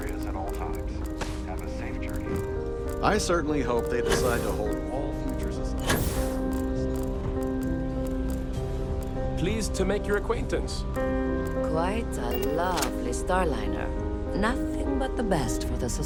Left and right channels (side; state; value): both; identical; correlation 1.00